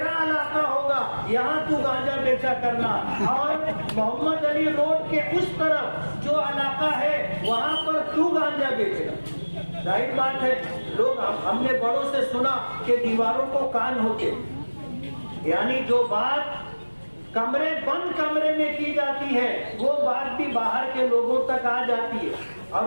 علاقہ ہوگا، یہاں تو گانجا بیچا کرنا، اور محمد علی روڈ کے اس طرف جو علاقہ ہے وہاں پر تو گانجا بیچنا۔ ظاہر بات ہے، لوگ ہم نے بڑوں سے سنا کہ دیواروں کو کان ہوتے، یعنی جو بات بند کمرے میں کی جاتی ہے وہ بات بھی باہر کے لوگوں تک آ جاتی ہے،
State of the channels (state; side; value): inverted; both; correlation -1.00